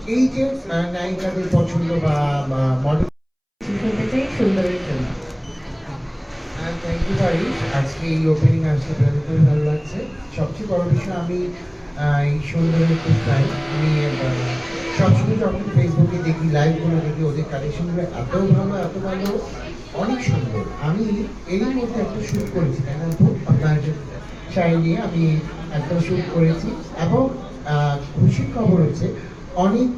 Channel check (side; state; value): both; identical; correlation 1.00